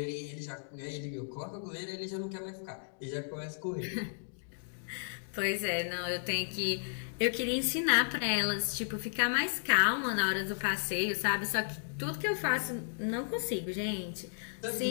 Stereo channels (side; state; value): right; silent; digital silence